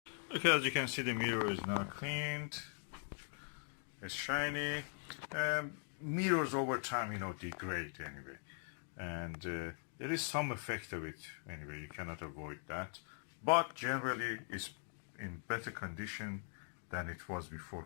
Okay, as you can see, the mirror is now cleaned. It's shiny. Mirrors over time, degrade anyway, and there is some effect of it anyway. You cannot avoid that, but generally it's in better condition than it was before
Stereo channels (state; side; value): silent; right; 50 dB below the other